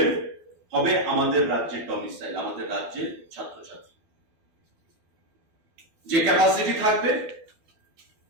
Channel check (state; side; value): late; left; 12 ms